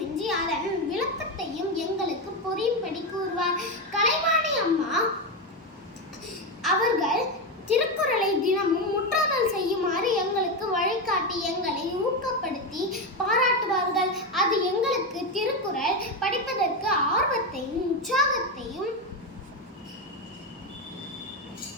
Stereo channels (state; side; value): normal; both; correlation 0.11